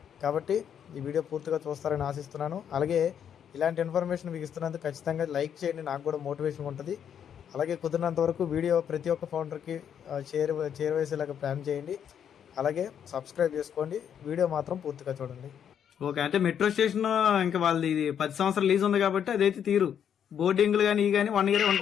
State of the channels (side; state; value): right; quieter; 8.6 dB